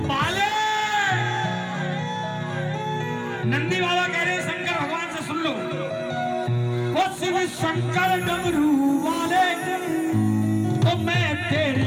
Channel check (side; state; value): both; identical; correlation 1.00